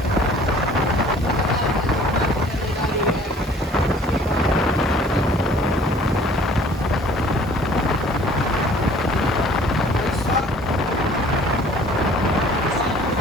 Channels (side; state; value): both; normal; correlation 0.53